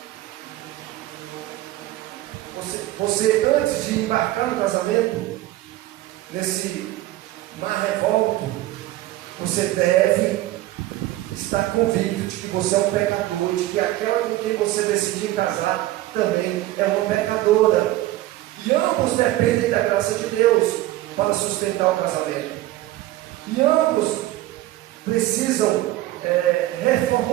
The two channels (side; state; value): left; quieter; 15.9 dB